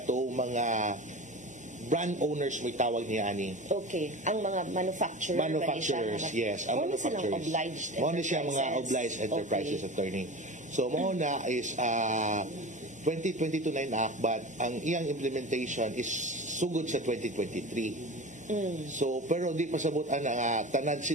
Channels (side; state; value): left; noise; hum, 28 dB below the sound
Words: mga brand owners may tawag niya ani. Okay. Ang mga manufacturers, yes. Ang manufacturers. Muna siya mga obliged enterprises attorney. So mo na is 2022 na enact but ang iyang implementation is sugod sa 2023. So pero di pasabot ana tanan